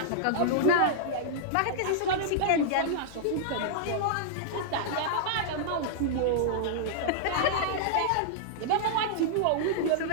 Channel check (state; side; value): different; both; correlation -0.01